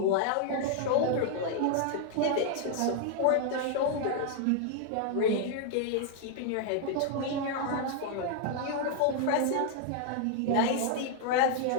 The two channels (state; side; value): different; both; correlation 0.00